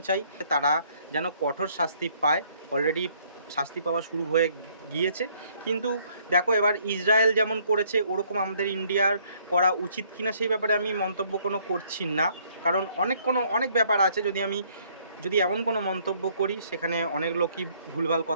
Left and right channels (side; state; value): both; inverted; correlation -0.64